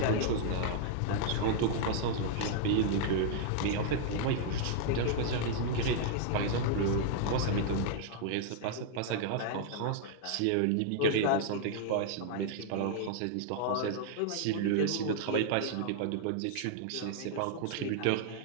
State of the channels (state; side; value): different; both; correlation -0.01